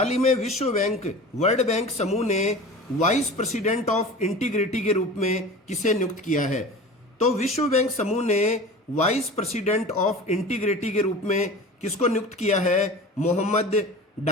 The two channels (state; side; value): normal; both; correlation 0.36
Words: ही में विश्व बैंक वर्ल्ड बैंक समूह ने वाइस प्रेसिडेंट ऑफ इंटीग्रिटी के रूप में किसे नियुक्त किया है? तो विश्व बैंक समूह ने वाइस प्रेसिडेंट ऑफ इंटीग्रिटी के रूप में किसको नियुक्त किया है? मोहम्मद